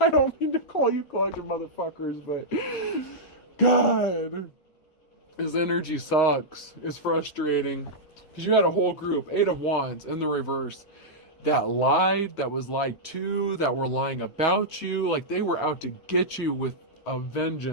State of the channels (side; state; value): right; late; 9.0 ms